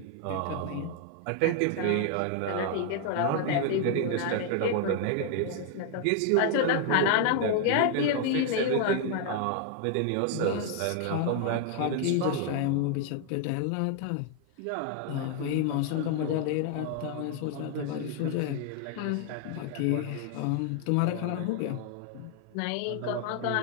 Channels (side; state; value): both; different; correlation 0.00